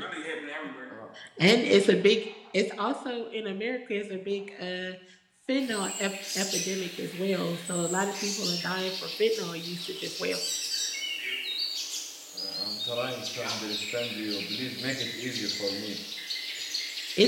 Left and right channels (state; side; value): identical; both; correlation 1.00